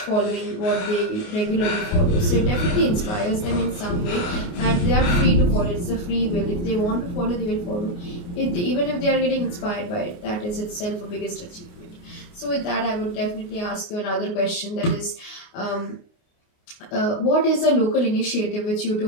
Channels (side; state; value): right; late; 29 ms